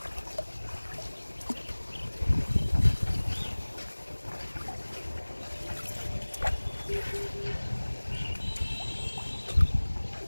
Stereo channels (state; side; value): inverted; both; correlation -1.00